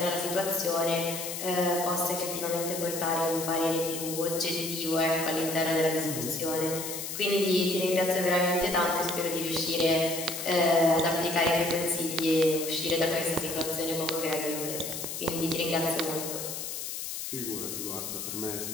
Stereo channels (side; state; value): left; noise; hiss, 6 dB below the sound